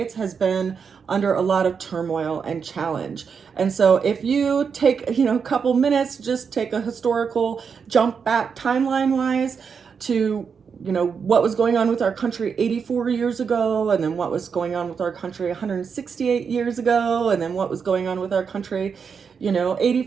has been under a lot of turmoil and challenge. And so if you take, a couple minutes, just take a historical jump back timeline-wise to what was going on with our country 84 years ago, and then what was going on with our country 168 years ago, and then what was going on with our country,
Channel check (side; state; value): left; quieter; 6.2 dB